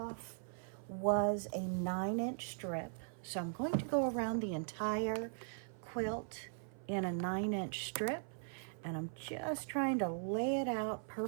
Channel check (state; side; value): silent; left; 51 dB below the other